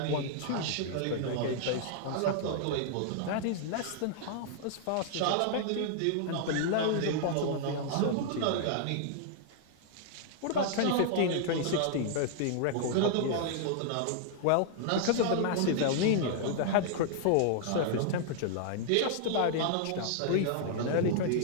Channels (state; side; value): different; both; correlation -0.01